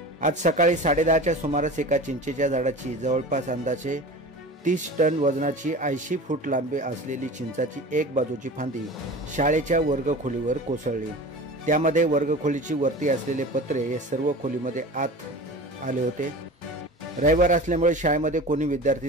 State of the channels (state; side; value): normal; both; correlation 0.35